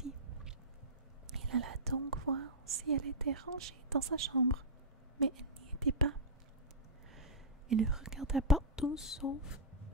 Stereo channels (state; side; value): normal; both; correlation -0.13